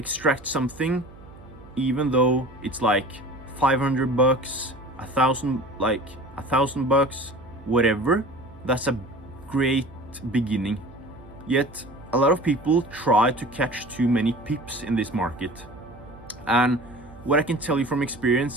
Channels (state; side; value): noise; right; hum, 20 dB below the sound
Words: something, even though it's like 500 bucks, a thousand bucks, whatever, that's a great beginning. Yet a lot of people try to catch too many pips in this market. And what I can tell you from